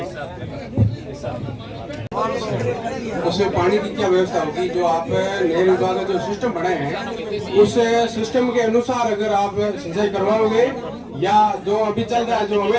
उसमें पानी की क्या व्यवस्था होगी? जो आप नहर विभाग का जो सिस्टम बनाए हैं, उस सिस्टम के अनुसार अगर आप सिंचाई करवाओगे या जो अभी चल रहा है जो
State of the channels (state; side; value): identical; both; correlation 1.00